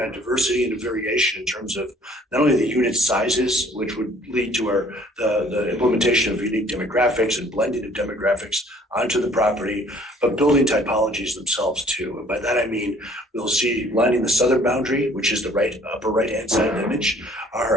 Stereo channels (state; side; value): normal; both; correlation 0.56